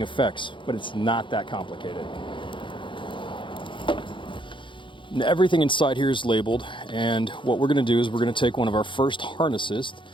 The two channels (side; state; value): right; late; 0.24 ms